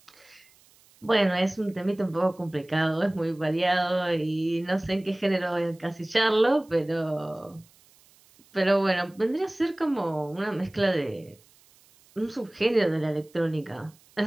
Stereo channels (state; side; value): noise; right; hiss, 30 dB below the sound